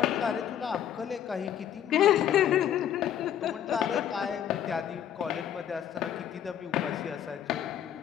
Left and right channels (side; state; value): right; quieter; 10.0 dB